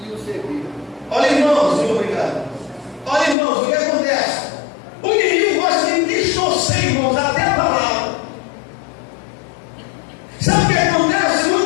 e o serviram. Olha, irmãos, muito obrigado. Olha, irmãos, o que acontece? O inimigo gosta de distorcer, irmãos, até a palavra. Sabe o que acontece?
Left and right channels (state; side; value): drops out; right; at 3.4 s